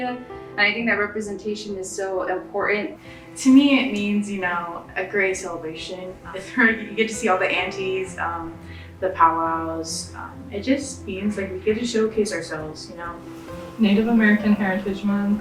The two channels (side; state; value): both; identical; correlation 1.00